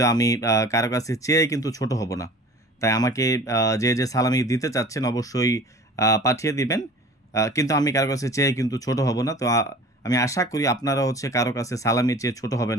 আমি কারো কাছে চেয়ে কিন্তু ছোট হব না। তাই আমাকে যে সালামি দিতে চাচ্ছেন অবশ্যই পাঠিয়ে দিবেন। কিন্তু আমি কারো কাছে চেয়ে কিন্তু ছোট হব না। তো আমি আশা করি আপনারা কারো কাছে সালামি চেয়ে ছোট হবেন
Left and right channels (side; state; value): both; normal; correlation 0.43